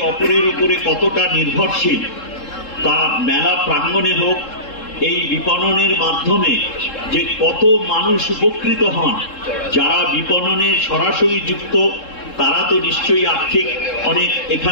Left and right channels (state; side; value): late; right; 3.7 ms